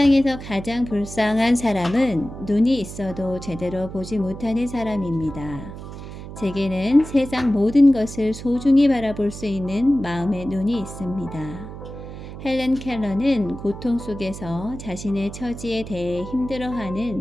가장 불쌍한 사람은 눈이 있어도 제대로 보지 못하는 사람입니다. 제게는 세상 모든 것을 소중히 바라볼 수 있는 마음의 눈이 있습니다. 헬렌 켈러는 고통 속에서 자신의 처지에 대해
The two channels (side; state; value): right; noise; hum, 11 dB below the sound